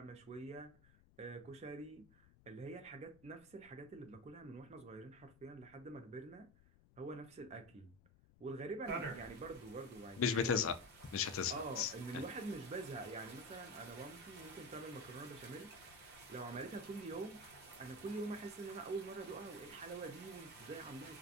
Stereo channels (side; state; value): left; noise; rumble, 24 dB below the sound